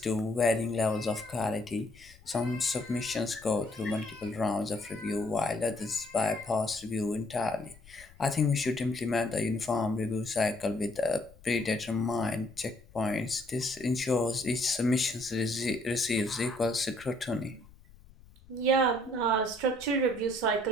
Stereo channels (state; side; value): noise; left; rumble, 24 dB below the sound